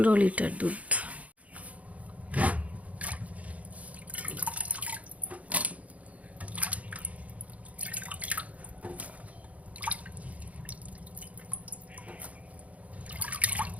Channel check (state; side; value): late; left; 0.068 ms